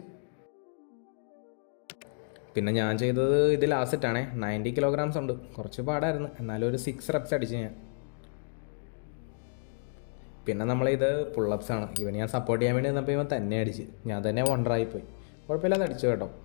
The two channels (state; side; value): silent; right; digital silence